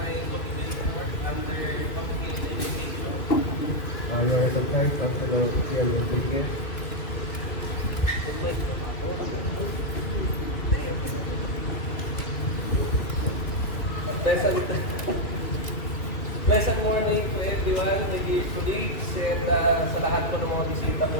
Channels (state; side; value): late; right; 2.4 ms